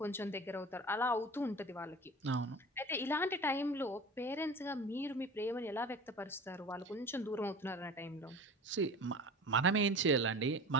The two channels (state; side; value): normal; both; correlation 0.36